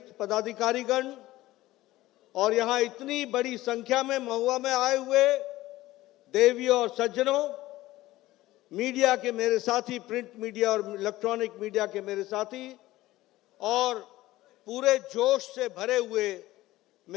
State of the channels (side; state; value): right; quieter; 16.9 dB